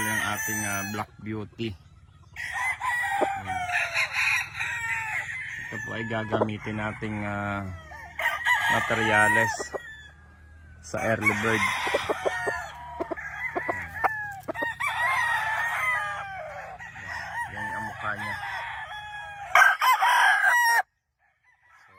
yung ating Black Beauty. Yan. Ito po ay gagamitin nating materyales sa early bird. Yan ang mukha niya. So,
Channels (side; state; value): both; identical; correlation 1.00